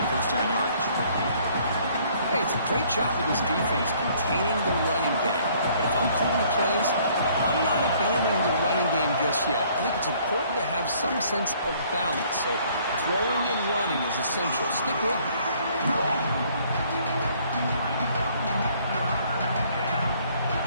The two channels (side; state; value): both; inverted; correlation -0.61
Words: first down yardage. Hey, it's a great job of this defense containing the running game. But if I'm calling the plays, I'm not abandoning the running game just yet. I think it's important to have some sense of balance. So throwing and running is essential. Stick with it.